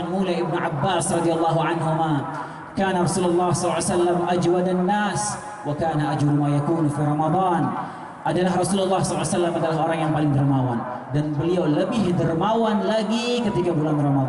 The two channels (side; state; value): both; identical; correlation 1.00